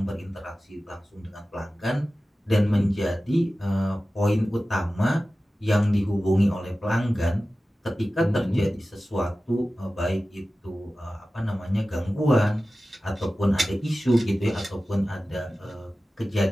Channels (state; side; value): normal; both; correlation 0.95